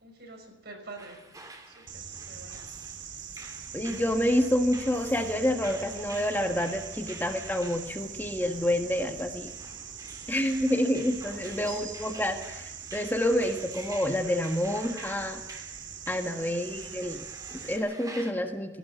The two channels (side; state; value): both; normal; correlation 0.76